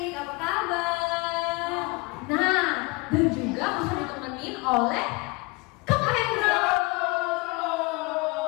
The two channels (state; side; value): quieter; right; 25.8 dB